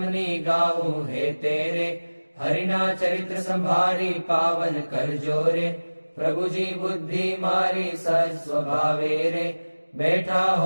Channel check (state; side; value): inverted; both; correlation -1.00